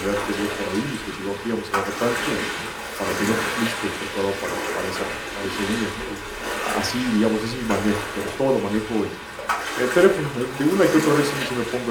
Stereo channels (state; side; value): identical; both; correlation 1.00